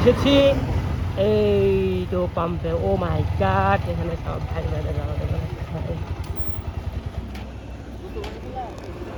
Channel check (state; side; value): identical; both; correlation 1.00